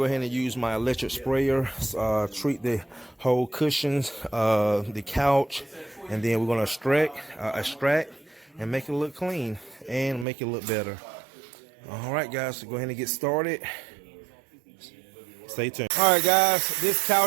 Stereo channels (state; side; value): drops out; left; at 10.2 s